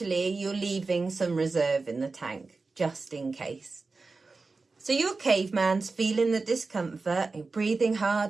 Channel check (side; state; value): left; quieter; 4.0 dB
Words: you're leaving some reserve in the tank, just in case. So your caveman's feeling the discomfort, you're breathing